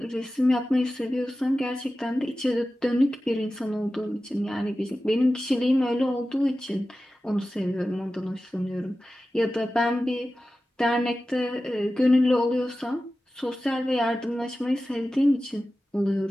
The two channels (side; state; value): both; normal; correlation 0.94